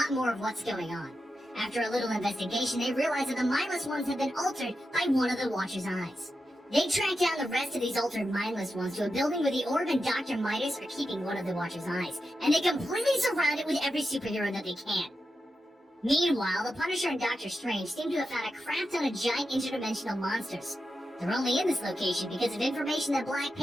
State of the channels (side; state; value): both; normal; correlation 0.89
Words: more of what's going on. After a little investigation, they realize that the Mindless Ones have been altered by one of the Watcher's eyes. They track down the rest of these altered Mindless Ones to a building where the Orb and Dr. Midas are keeping one of the Watcher's eyes, and they completely surround it with every superhero that they can. Meanwhile, the Punisher and Doctor Strange seem to have found a crap ton of giant interdimensional monsters. They're only in this location because of information that Black